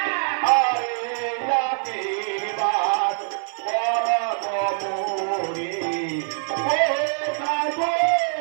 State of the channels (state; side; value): silent; left; 56 dB below the other